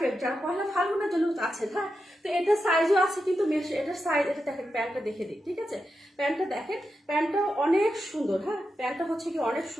যার পয়লা ফাল্গুনের জন্য আছে। হ্যাঁ, তো এটা সাইজও আছে কিন্তু এটার সাইজ, এটা দেখেন প্যান্টটা দেখে দিই, ঠিক আছে? প্যান্টটা দেখেন, প্যান্টটা অনেক সুন্দর। হ্যাঁ, প্যান্টটা হচ্ছে কি অনেক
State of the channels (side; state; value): both; normal; correlation 0.88